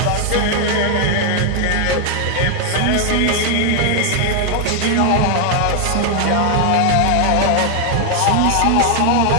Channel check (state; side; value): different; both; correlation 0.00